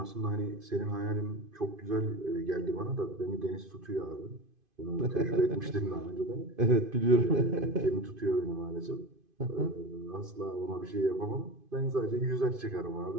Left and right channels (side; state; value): left; late; 2.5 ms